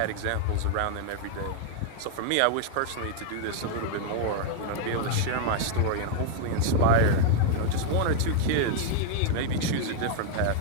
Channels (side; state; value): both; different; correlation 0.00